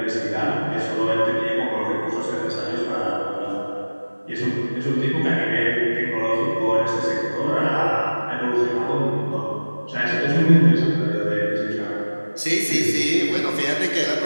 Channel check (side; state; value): both; inverted; correlation -1.00